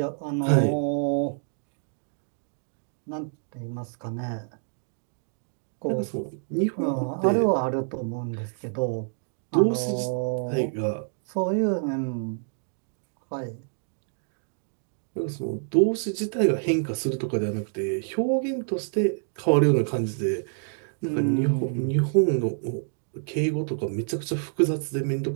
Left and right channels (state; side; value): silent; left; digital silence